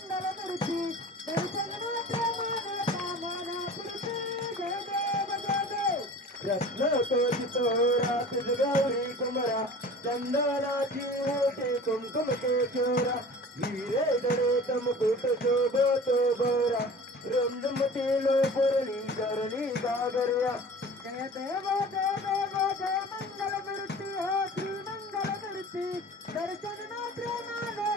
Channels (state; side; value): normal; both; correlation 0.41